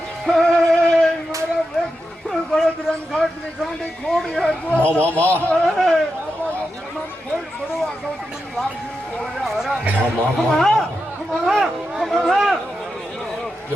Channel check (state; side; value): normal; both; correlation 0.88